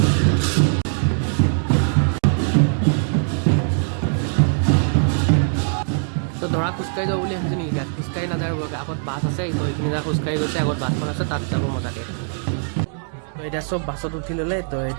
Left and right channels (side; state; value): left; silent; digital silence